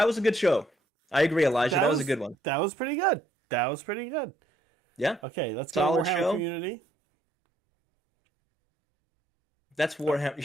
was a good show. I agree, Elijah. That was a good one. That was pretty good. That was pretty good. Yeah, Okay, let's go Solid to Warhammer show. Community. that's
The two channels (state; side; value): normal; both; correlation 0.68